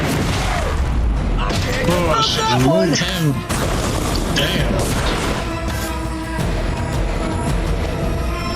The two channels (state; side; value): identical; both; correlation 1.00